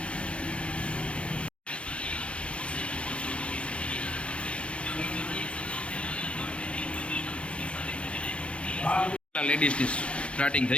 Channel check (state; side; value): late; right; 0.060 ms